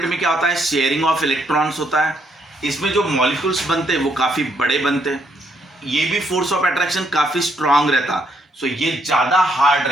में क्या होता है? शेयरिंग ऑफ इलेक्ट्रॉन्स होता है। इसमें जो मॉलिक्यूल्स बनते हैं वो काफी बड़े बनते हैं। ये भी फोर्स ऑफ अट्रैक्शन काफी स्ट्रांग रहता। सो ये ज्यादा हार्ड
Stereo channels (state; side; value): normal; both; correlation 0.73